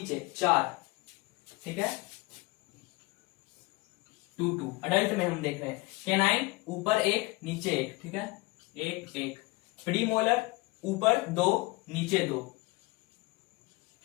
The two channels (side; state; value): right; quieter; 23.3 dB